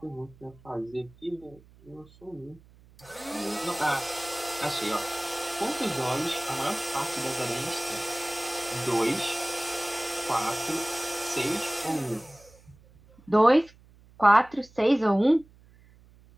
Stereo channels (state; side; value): noise; right; hum, 26 dB below the sound